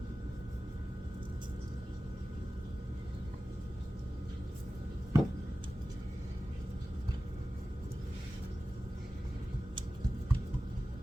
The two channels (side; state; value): both; normal; correlation 0.95